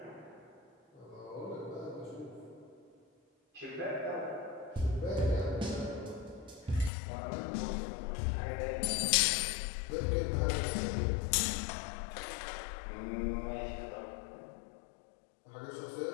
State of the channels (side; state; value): right; drops out; at 6.9 s